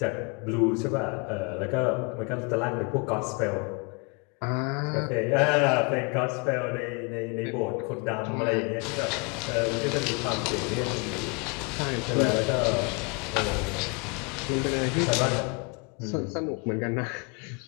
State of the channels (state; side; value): quieter; right; 32.7 dB